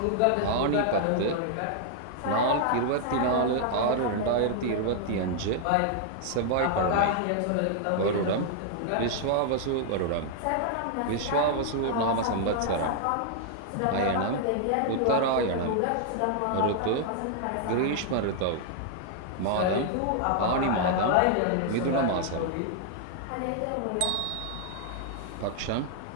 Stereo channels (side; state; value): both; different; correlation 0.00